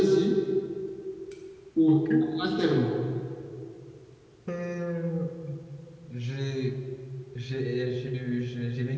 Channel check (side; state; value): both; identical; correlation 1.00